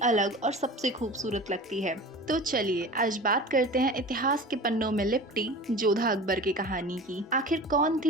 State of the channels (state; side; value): normal; both; correlation 0.37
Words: अलग और सबसे खूबसूरत लगती है। तो चलिए आज बात करते हैं इतिहास के पन्नों में लिपटी जोधा अकबर की कहानी की। आखिर कौन